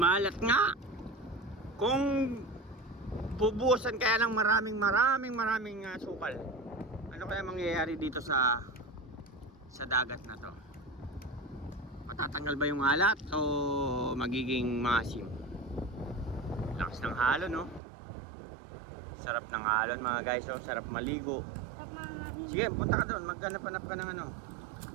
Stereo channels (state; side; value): drops out; left; at 17.8 s